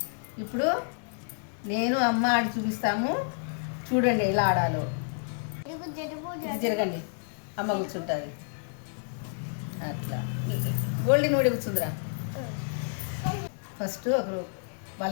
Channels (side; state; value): right; silent; 56 dB below the other